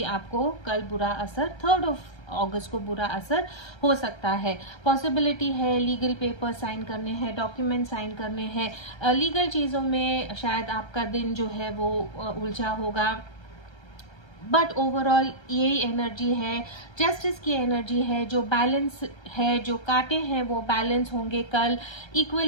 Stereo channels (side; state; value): right; late; 1.3 ms